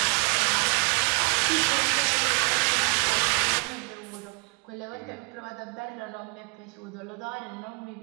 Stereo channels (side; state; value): left; quieter; 32.8 dB